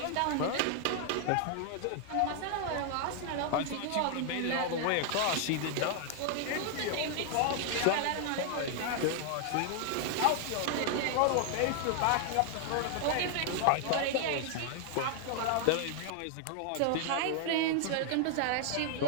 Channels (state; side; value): different; both; correlation 0.00